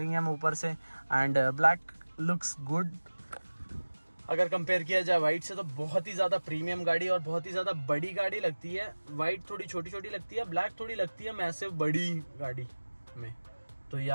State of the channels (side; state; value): both; inverted; correlation -1.00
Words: हम ऊपर से। एंड ब्लैक लुक्स गुड अगर कंपेयर किया जाए वाइट से, तो बहुत ही ज़्यादा प्रीमियम गाड़ी और बहुत ही ज़्यादा बड़ी गाड़ी लगती है। वाइट थोड़ी छोटी लगती है, ब्लैक थोड़ी लगती है मैसिव बड़ी गाड़ी में। तो